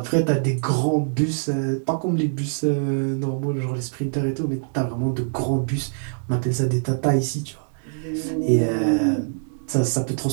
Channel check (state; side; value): silent; left; digital silence